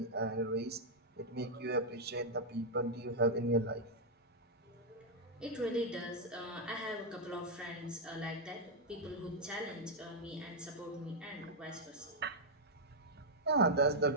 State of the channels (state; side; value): normal; both; correlation -0.03